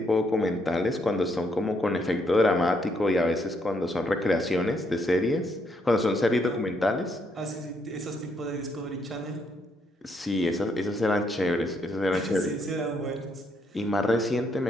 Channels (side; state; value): both; normal; correlation 0.74